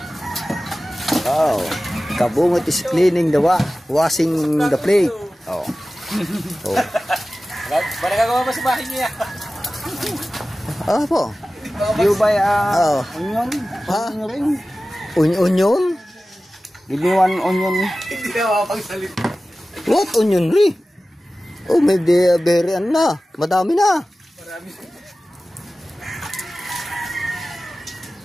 Oh. Kabungot is cleaning the washing the plate. Oh. Oh. Para gagawa pa sa bahay niya. Ah po. You buy Oh. onion? Ha? Onion ring? Onion? Give me one onion. Hindi na mapagsalita. What onion ring? Oh, may berry na. Madami na. Marami.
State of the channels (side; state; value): both; normal; correlation 0.96